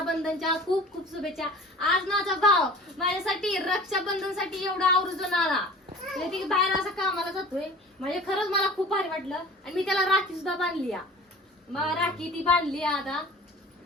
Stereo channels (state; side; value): normal; both; correlation 0.43